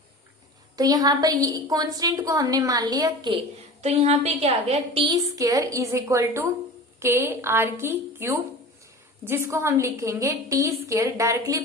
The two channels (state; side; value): normal; both; correlation 0.35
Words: तो यहाँ पर कांस्टेंट को हमने मान लिया k। तो यहाँ पे क्या आ गया? t² is equal to k r³, जिसको हम लिखेंगे t² directly